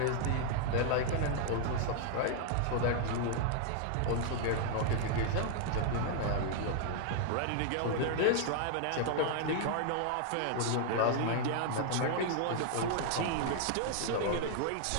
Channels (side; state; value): both; different; correlation 0.00